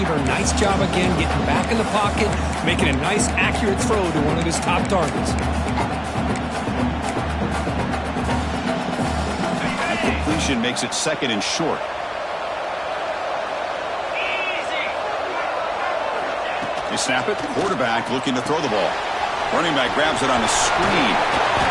Nice job again, getting back in the pocket, making a nice, accurate throw to one of his top targets. That completion makes it second and short. They snap it. Quarterback looking to throw the ball. Running back grabs it on a screen.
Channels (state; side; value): identical; both; correlation 1.00